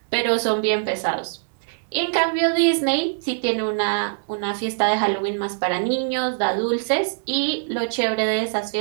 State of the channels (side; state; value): left; silent; digital silence